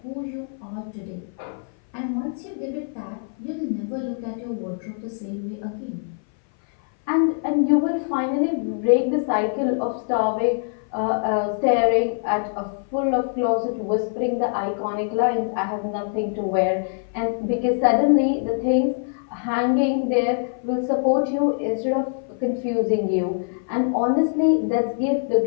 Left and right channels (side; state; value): right; silent; 58 dB below the other